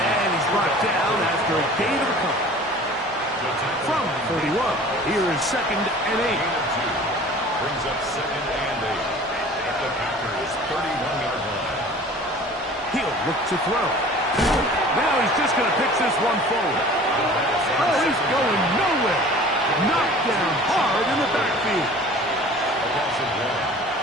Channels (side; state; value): both; normal; correlation 0.45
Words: he's brought down after a gain of a couple. From 31, here is 2nd and 8. Gain of 2. Brings up 2nd and 8. At the Packers' 31-yard line. He'll look to throw. Now he's just going to pitch this one forward. Oh, he's going nowhere. Knocked down hard in the backfield.